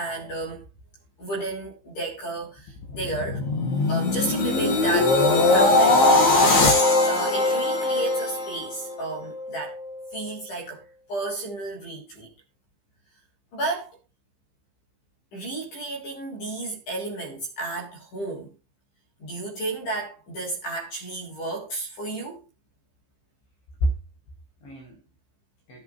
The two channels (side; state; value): right; late; 15 ms